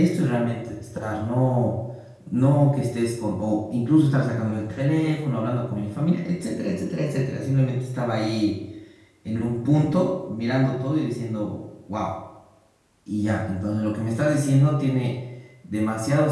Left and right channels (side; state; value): both; identical; correlation 1.00